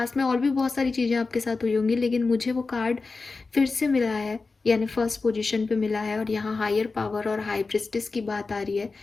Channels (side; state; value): right; quieter; 4.0 dB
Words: में और भी बहुत सारी चीज़ें आपके साथ हुई होंगी, लेकिन मुझे वो कार्ड फिर से मिला है, यानी फर्स्ट पोजीशन पे मिला है, और यहाँ हायर पावर और हाई प्रिस्टिस की बात आ रही है।